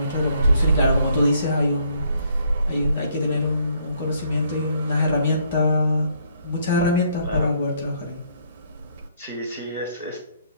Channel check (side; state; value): both; inverted; correlation -0.68